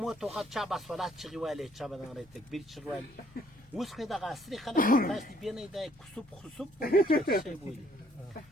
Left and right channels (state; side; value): noise; left; rumble, 28 dB below the sound